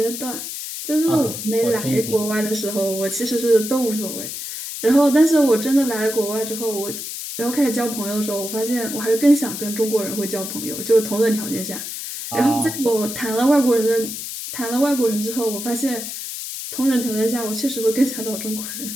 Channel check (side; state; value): left; noise; hiss, 7 dB below the sound